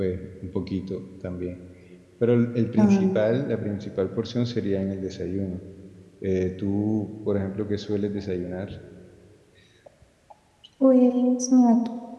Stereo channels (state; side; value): identical; both; correlation 1.00